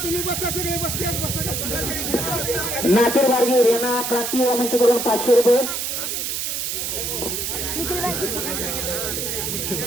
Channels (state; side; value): noise; right; hiss, 2 dB below the sound